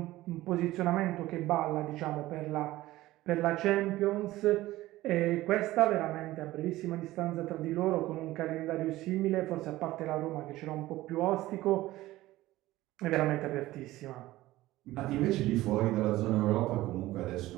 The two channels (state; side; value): quieter; left; 16.9 dB